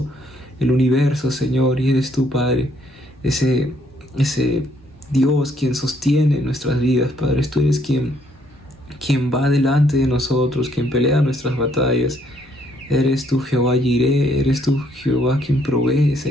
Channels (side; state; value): both; normal; correlation 0.68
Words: el universo, Señor, y eres tú, Padre, ese Dios quien sostiene nuestras vidas, Padre. Tú eres quien va delante de nosotros, quien pelea nuestras batallas. Eres tú, Jehová Jireh, eres tú, Jehová, quien provee,